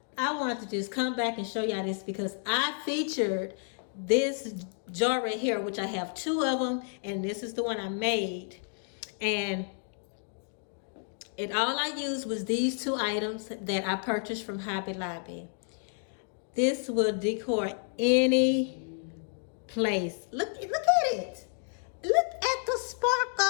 I wanted to just come back and show y'all this because I featured this jar right here, which I have two of them, and this is the one I made. And all I used was these two items that I purchased from Hobby Lobby. This will decor any place. Look at it. Look at the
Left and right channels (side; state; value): right; silent; 57 dB below the other